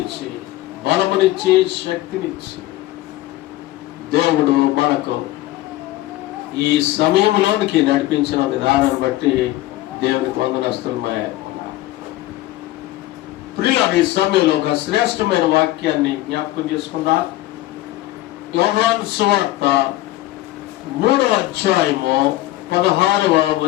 బలమునిచ్చి శక్తినిచ్చి దేవుడు మనకు ఈ సమయంలోనికి నడిపించిన విధానం బట్టి దేవునికి వందనస్తున్నాయి. ప్రియులారా, ఈ సమయంలో ఒక శ్రేష్టమైన వాక్యాన్ని జ్ఞాపకం చేసుకుందాం. యోహాను సువార్త 3వ అధ్యాయము 16వ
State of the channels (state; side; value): quieter; right; 16.7 dB